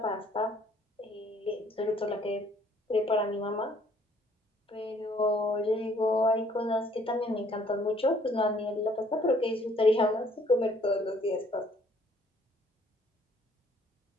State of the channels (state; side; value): normal; both; correlation 0.62